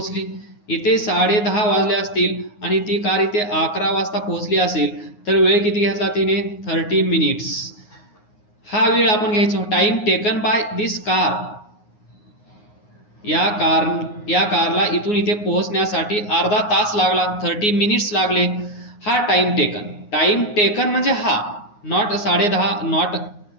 इथे 10:30 वाजले असतील आणि ती कार इथे 11 वाजता पोहोचली असेल तर वेळ किती घेतला तिने? 30 मिनिट्स. हा वेळ आपण घ्यायचो. Time taken by this car. या कारला इथून इथे पोहोचण्यासाठी अर्धा तास लागला, 30 मिनिट्स लागले. हा टाइम टेकन. टाइम टेकन म्हणजे हा, नॉट 10:30, नॉट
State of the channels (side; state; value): right; late; 9.6 ms